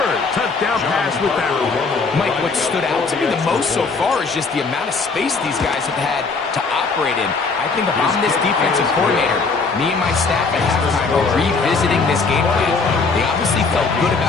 touchdown pass with that one. Mike, what stood out to me the most so far is just the amount of space these guys have had to operate in. I think if I'm this defensive coordinator, me and my staff at halftime are revisiting this game plan. They obviously felt good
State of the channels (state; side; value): quieter; right; 4.4 dB